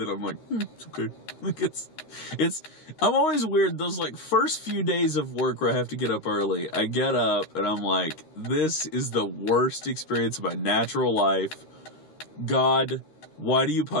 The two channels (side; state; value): right; late; 13 ms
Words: I'm like, it's okay. Like I'm always weird. Those like first few days of work where I have to get up early, I get up and I'm like, this is the worst experience of my natural life. God, why do you